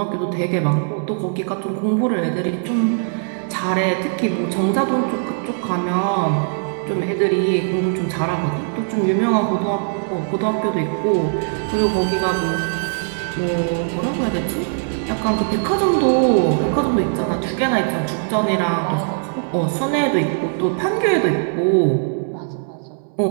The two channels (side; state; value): left; silent; 65 dB below the other